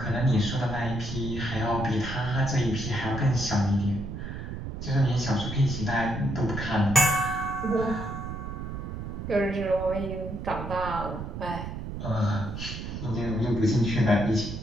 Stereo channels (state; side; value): noise; right; rumble, 7 dB below the sound